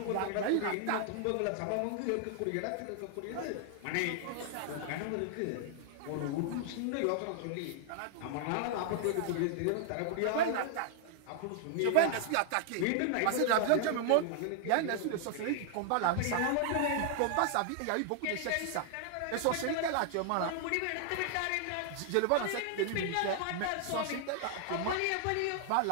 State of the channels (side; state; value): both; different; correlation 0.00